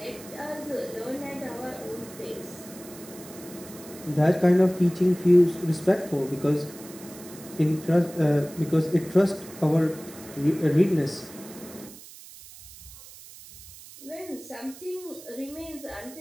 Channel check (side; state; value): right; noise; hiss, 18 dB below the sound